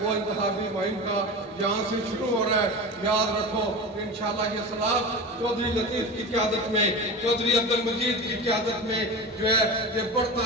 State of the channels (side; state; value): both; normal; correlation 0.28